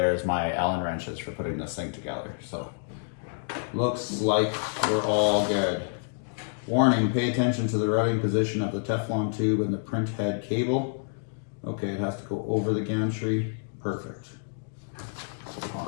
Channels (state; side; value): silent; right; digital silence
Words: my Allen wrenches for putting this thing together. So, looks like we're all good. Warning, pay attention to the routing position of the Teflon tube and the print head cable. Okay, it has to go over the gantry. Perfect.